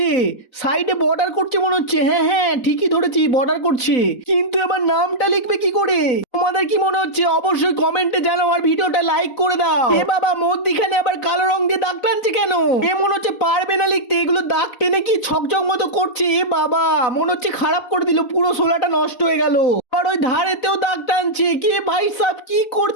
সাইডে বর্ডার করছে মনে হচ্ছে। হ্যাঁ হ্যাঁ, ঠিকই ধরেছি, বর্ডার করছে। কিন্তু এবার নামটা লিখবে কি করে? তোমাদের কি মনে হচ্ছে অবশ্যই কমেন্টে জানাও আর ভিডিওটা লাইক করে দাও। এ বাবা, মধ্যিখানে আবার কালো রং দিয়ে দাগ টানছে কেন? এ মনে হচ্ছে পারবে না লিখতে, এগুলো দাগ টেনে কি ছকছক মতো করছে। এ বাবা, মনে হচ্ছে খারাপ করে দিল, পুরো সোলাটা নষ্ট হয়ে গেল। আর ওই ধারেতেও দাগ টানছে। কে ভাই সাব, কি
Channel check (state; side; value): late; right; 4.0 ms